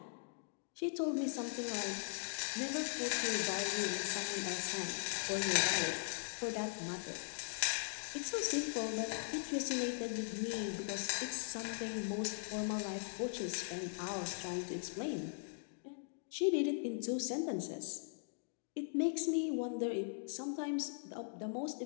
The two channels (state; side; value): silent; right; digital silence